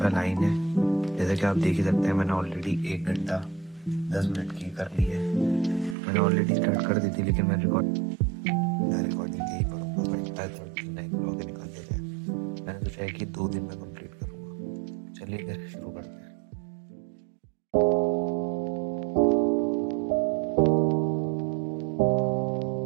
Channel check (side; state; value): left; drops out; at 6.0 s